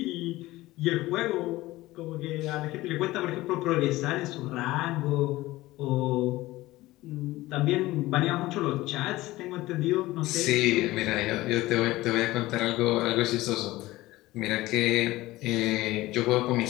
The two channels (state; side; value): quieter; right; 18.0 dB